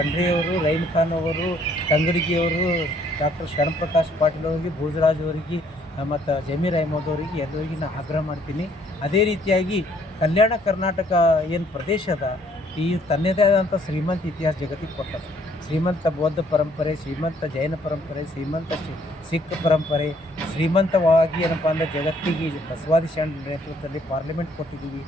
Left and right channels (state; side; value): normal; both; correlation 0.64